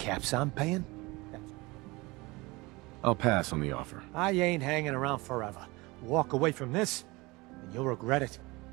I'm paying, I'll pass on the offer. I ain't hanging around forever. Walk away from this, and you'll regret it.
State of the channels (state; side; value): quieter; left; 23.4 dB